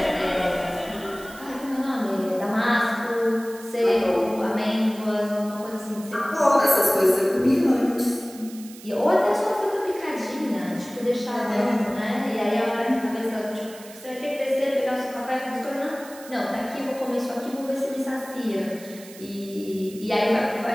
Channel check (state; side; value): noise; right; hiss, 18 dB below the sound